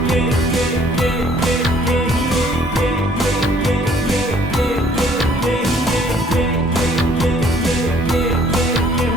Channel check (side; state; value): both; normal; correlation 0.59